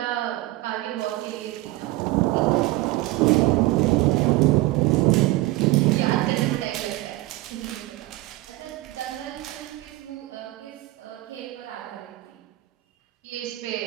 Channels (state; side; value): quieter; left; 18.8 dB